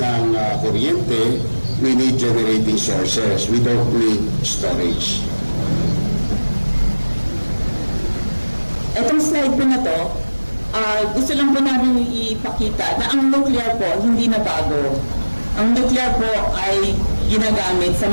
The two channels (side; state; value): both; inverted; correlation -1.00